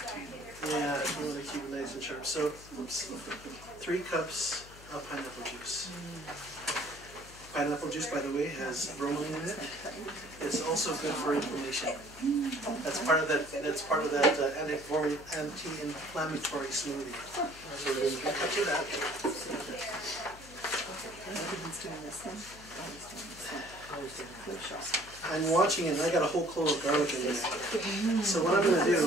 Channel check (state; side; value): noise; left; hum, 19 dB below the sound